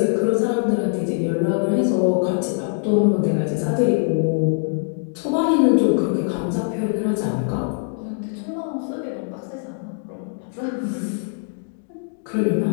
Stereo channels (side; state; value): right; silent; digital silence